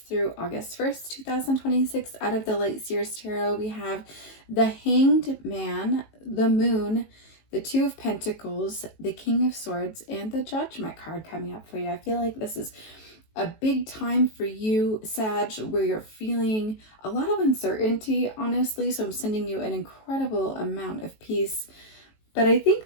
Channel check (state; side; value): late; right; 19 ms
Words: through August 1st, 2026. Out of the Light Seers Tarot, we have the Hanged Man, the Moon, the Two of Pentacles, the King of Swords, and the Judgment card coming up for you. I feel like this is a big time for you, Sag, where you're feeling a lot of uncertainty, honestly. So I'm sending you an incredible amount of peace. But I